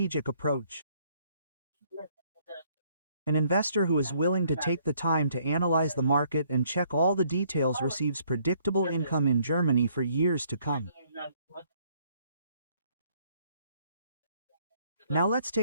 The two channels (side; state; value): both; inverted; correlation -0.65